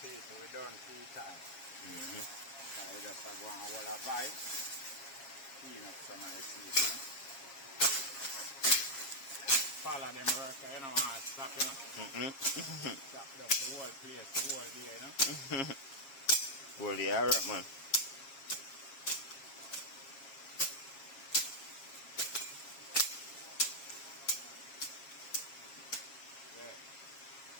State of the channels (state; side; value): late; right; 7.4 ms